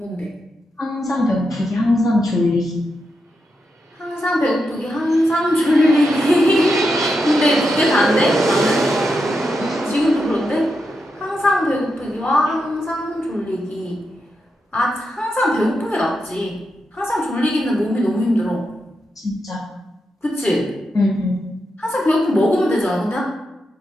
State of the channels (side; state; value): both; normal; correlation 0.86